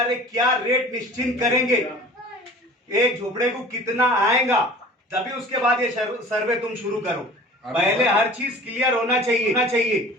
रहे, क्या रेट निश्चित करेंगे, एक झोपड़े को कितना आएगा, तभी उसके बाद ये सर्वे तुम शुरू करो। पहले हर चीज क्लियर होना चाहिए।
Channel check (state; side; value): normal; both; correlation 0.43